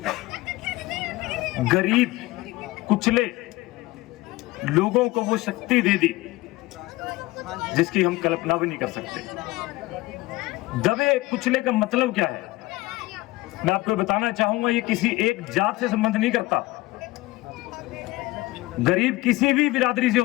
गरीब कुचले लोगों को वो शक्ति दे दी जिसकी हम कल्पना भी नहीं कर सकते। दबे कुचले का मतलब क्या है? मैं आपको बताना चाहूंगा, ये किसी एक जात से संबंध नहीं करता। गरीब किसी भी बिरादरी से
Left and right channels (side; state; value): right; quieter; 19.8 dB